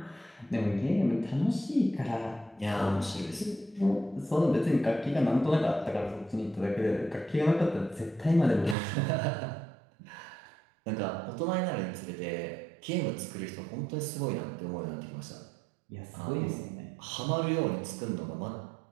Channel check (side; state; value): left; drops out; at 8.8 s